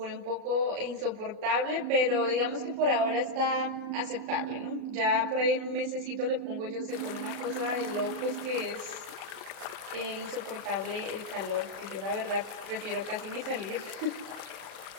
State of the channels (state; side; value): late; left; 37 ms